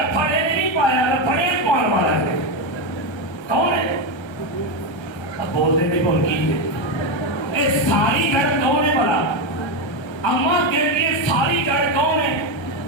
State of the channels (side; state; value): right; late; 1.3 ms